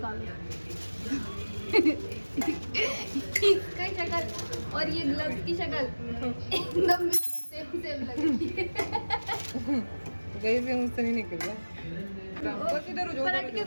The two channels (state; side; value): inverted; both; correlation -1.00